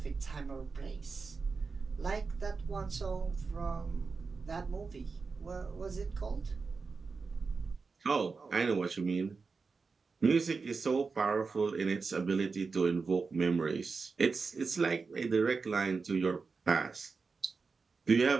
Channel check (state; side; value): quieter; left; 4.6 dB